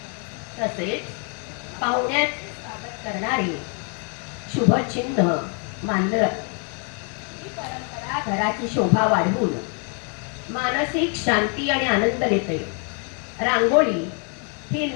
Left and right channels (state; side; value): quieter; right; 39.9 dB